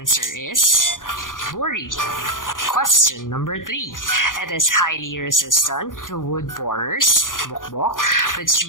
is burri. Question number 3. It is highly resistant to wood borers, bokbok, which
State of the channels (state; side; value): late; right; 0.89 ms